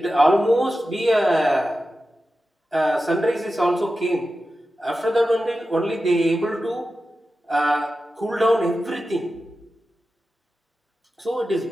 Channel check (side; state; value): both; normal; correlation 0.93